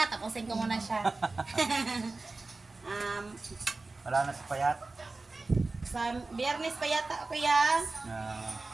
Tapusin ko muna siya. Wala na sa payat. Sa biyernes pa yata, kuya.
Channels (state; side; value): quieter; left; 3.5 dB